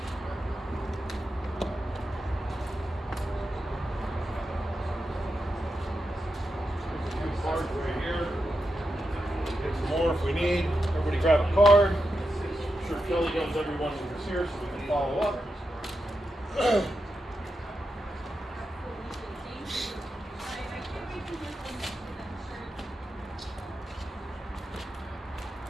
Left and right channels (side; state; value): both; normal; correlation 0.87